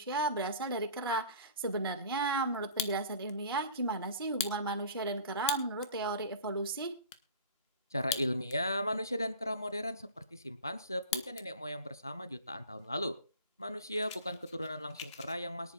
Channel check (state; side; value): inverted; both; correlation -0.41